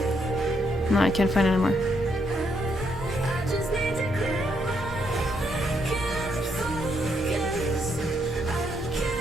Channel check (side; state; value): both; normal; correlation 0.76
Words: No, I can't find it anymore.